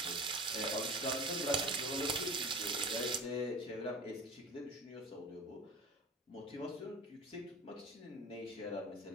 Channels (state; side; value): normal; both; correlation 0.35